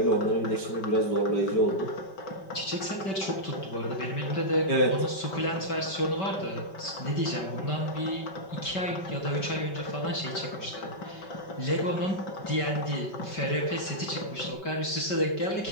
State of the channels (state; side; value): late; right; 5.2 ms